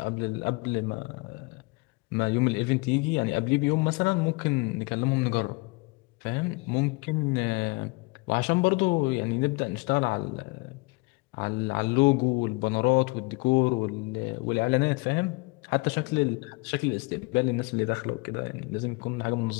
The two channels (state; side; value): quieter; right; 27.3 dB